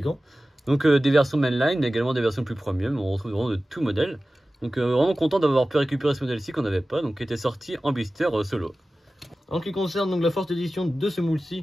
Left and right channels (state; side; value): normal; both; correlation 0.96